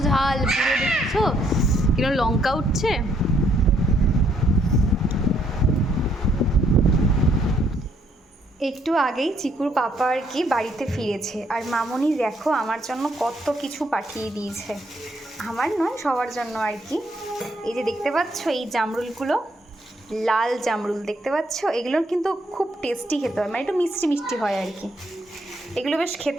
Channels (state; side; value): normal; both; correlation 0.70